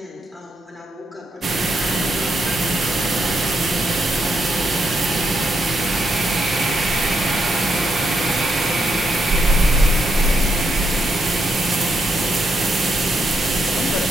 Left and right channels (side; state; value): both; normal; correlation 0.79